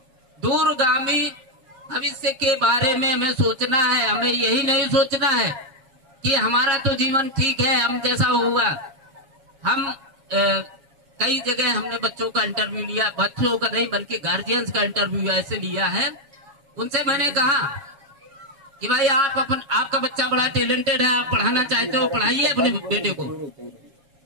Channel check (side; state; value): left; late; 7.2 ms